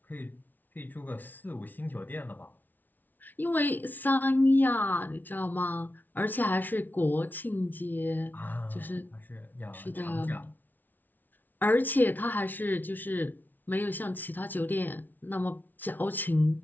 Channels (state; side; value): late; right; 0.085 ms